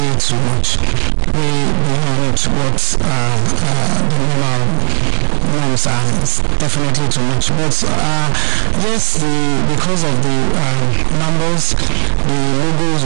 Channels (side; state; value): left; silent; digital silence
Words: too much. Way beyond what the normal norms are. It's definitely too much. But yes, because of the numbers, the logos